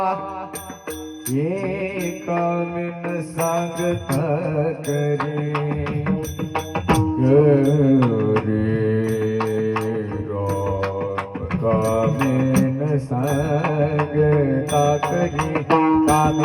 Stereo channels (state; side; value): identical; both; correlation 1.00